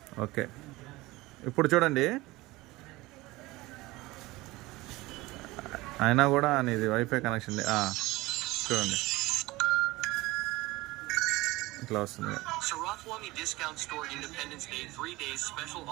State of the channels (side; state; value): left; quieter; 20.2 dB